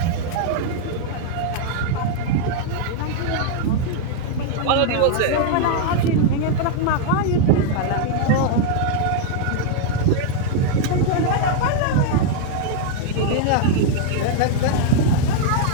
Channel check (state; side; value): different; both; correlation 0.00